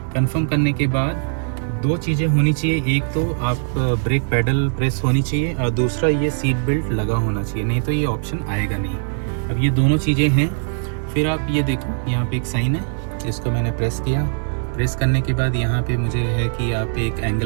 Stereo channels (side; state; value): left; silent; 62 dB below the other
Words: कंफर्म करने के बाद दो चीज़ें होनी चाहिए, एक तो आप ब्रेक पैडल प्रेस होनी चाहिए और दूसरा ये सीट बेल्ट लगा होना चाहिए, नहीं तो ये ऑप्शन आएगा नहीं। अब ये दोनों चीज़ें हैं। फिर आप ये देखो, यहाँ पे एक साइन है, इसको मैंने प्रेस किया। प्रेस करने के बाद यहाँ पे मुझे है कि आप एक